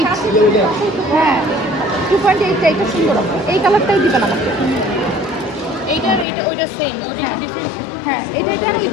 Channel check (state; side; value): drops out; right; at 6.2 s